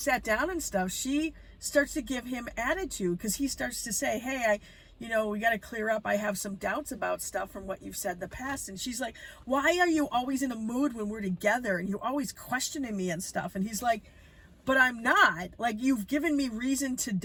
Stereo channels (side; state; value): both; identical; correlation 1.00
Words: down and stuff, she starts to give him attitude, because he starts to say, hey, we got to clear up. I have some doubts about stuff from what you've said in the past. And she's like, why are you always in a mood when we're together, and you're always questioning me and stuff? And he's like, but I'm not. Like, you've given me reason to